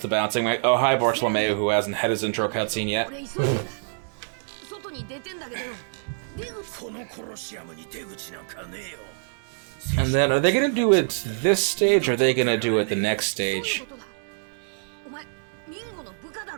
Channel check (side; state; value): left; silent; digital silence